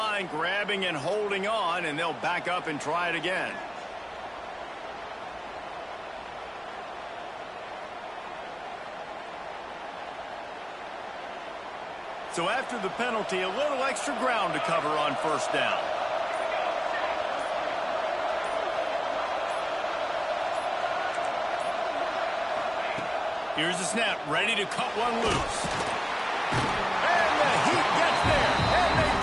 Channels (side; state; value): both; identical; correlation 1.00